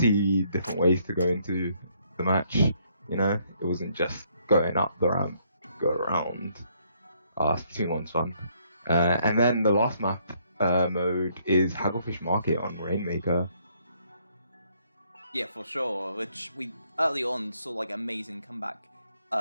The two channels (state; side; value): inverted; both; correlation -0.69